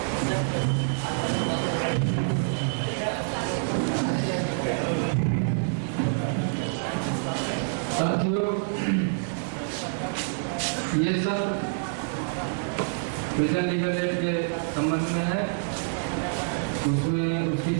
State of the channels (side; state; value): left; silent; 60 dB below the other